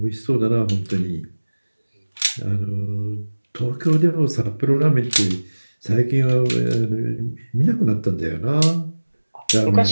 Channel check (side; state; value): both; inverted; correlation -1.00